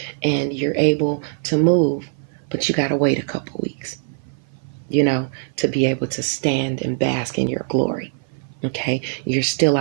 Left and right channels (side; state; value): left; silent; 56 dB below the other